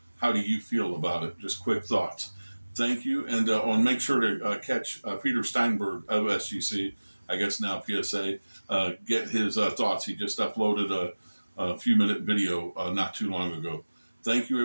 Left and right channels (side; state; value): both; inverted; correlation -1.00